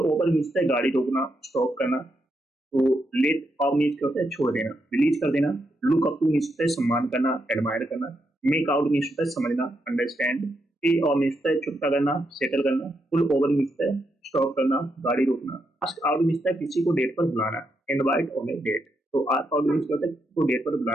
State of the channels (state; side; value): normal; both; correlation 0.81